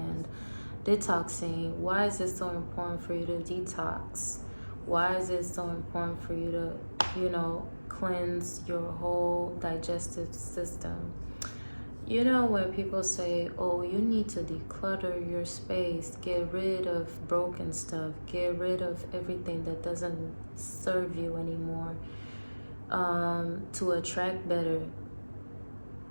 detoxing. Why is it so important for you to detox? Why is it so important for you to, cleanse your whole digestive system? When people say, oh, you need to declutter your space, get rid of broken stuff, get rid of everything that doesn't serve you anymore, to attract better,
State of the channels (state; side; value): inverted; both; correlation -1.00